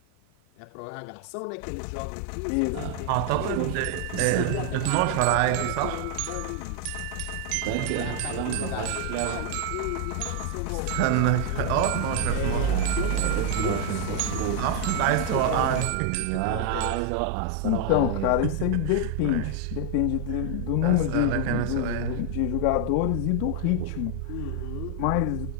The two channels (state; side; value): different; both; correlation 0.00